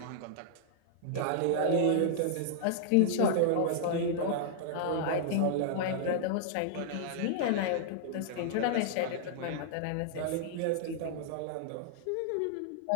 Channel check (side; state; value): both; different; correlation -0.01